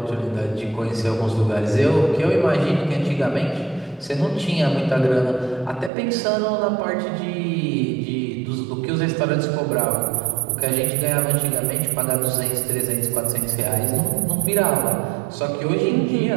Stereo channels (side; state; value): left; drops out; at 5.9 s